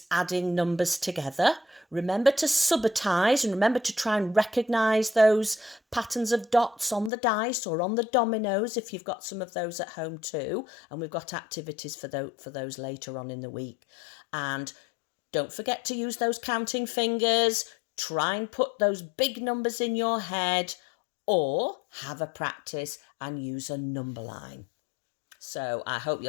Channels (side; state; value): right; drops out; at 7.1 s